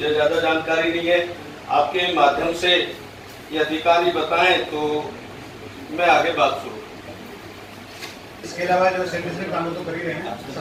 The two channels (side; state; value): both; identical; correlation 1.00